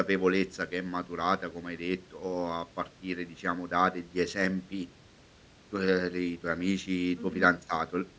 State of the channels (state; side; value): identical; both; correlation 1.00